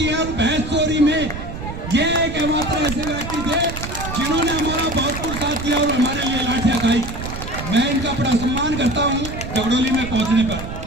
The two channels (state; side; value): noise; right; rumble, 8 dB below the sound